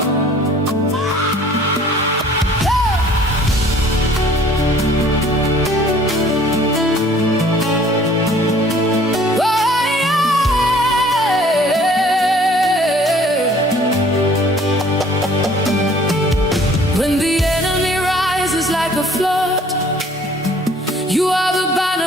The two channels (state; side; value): normal; both; correlation 0.54